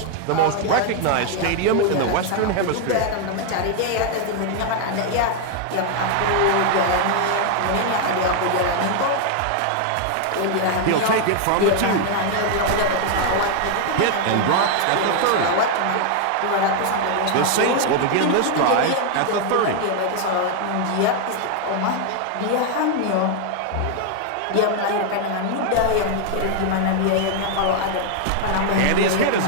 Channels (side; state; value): both; different; correlation 0.00